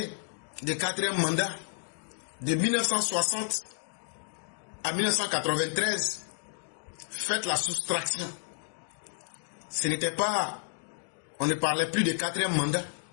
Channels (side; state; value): right; silent; digital silence